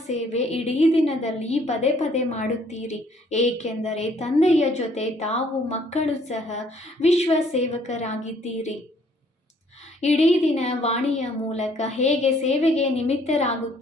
ಸೇವೆ ಇಡೀ ದಿನದಲ್ಲಿ ಪದೇ ಪದೇ ಮಾಡುತ್ತೀರಿ, ಏಕೆಂದರೆ ತಂದೆಯ ಜೊತೆ ತಾವು ಮಕ್ಕಳು ಸಹ ವಿಶ್ವ ಸೇವಕರಾಗಿದ್ದೀರಿ. ಇಡೀ ದಿನ ವಾಣಿಯ ಮೂಲಕ ಹೇಗೆ ಸೇವೆಗೆ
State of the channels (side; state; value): both; normal; correlation 0.63